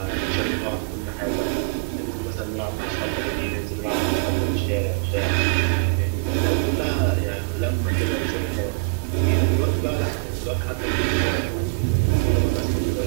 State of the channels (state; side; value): quieter; left; 32.6 dB